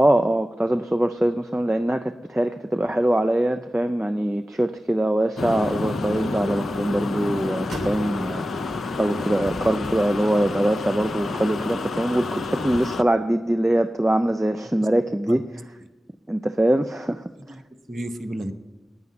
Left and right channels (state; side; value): normal; both; correlation 0.95